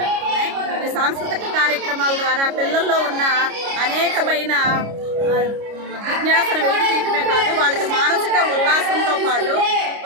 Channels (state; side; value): late; left; 29 ms